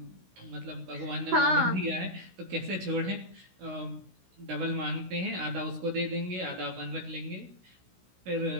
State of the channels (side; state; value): left; late; 16 ms